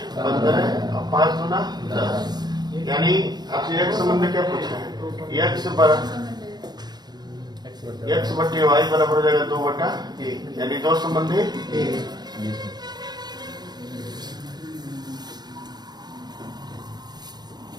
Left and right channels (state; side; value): late; left; 0.20 ms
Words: 15 और 5 गुना 10। यानी आपसे एक संबंध में क्या पूछा है? x बटे y बराबर हो जाएगा 2/1, यानी 2 संबंध है 1।